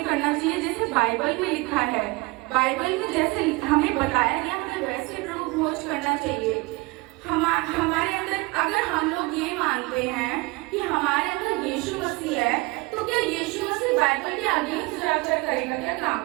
करना चाहिए जैसे बाइबल में लिखा है। बाइबल में जैसे हमें बताया गया हमें वैसे प्रभु भोज करना चाहिए। हमारे अंदर अगर हम लोग ये मानते हैं कि हमारे अंदर यीशु मसीह है, तो क्या यीशु मसीह बाइबल के आगे जाकर करेगा क्या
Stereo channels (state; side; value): quieter; left; 24.2 dB